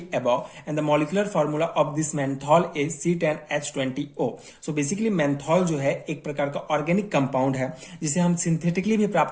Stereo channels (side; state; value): both; identical; correlation 1.00